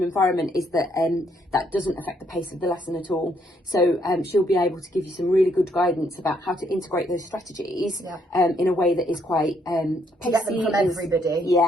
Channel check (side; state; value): both; normal; correlation 0.71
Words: environment is that that doesn't affect the pace of the lesson at all. So she'll be able to give you some really good guidance about how to integrate those strategies in a way that is quite pacey. Get them from everybody.